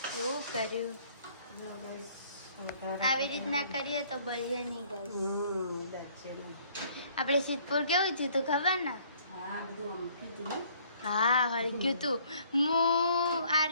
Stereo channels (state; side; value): inverted; both; correlation -0.59